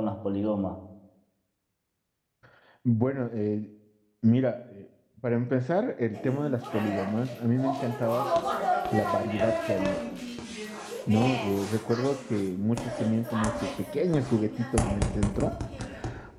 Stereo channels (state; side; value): identical; both; correlation 1.00